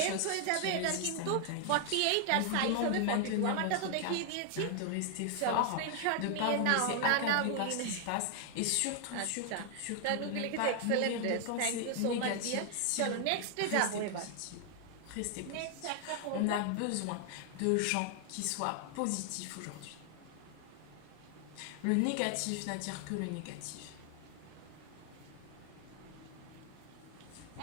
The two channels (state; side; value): different; both; correlation 0.00